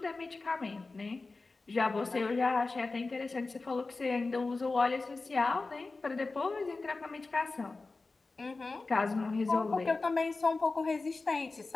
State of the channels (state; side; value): quieter; right; 3.7 dB